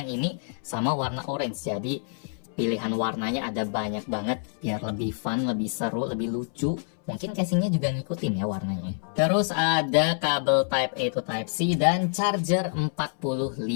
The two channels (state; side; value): silent; right; 60 dB below the other